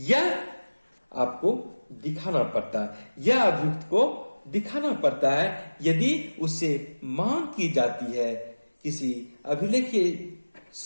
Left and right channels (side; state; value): both; inverted; correlation -1.00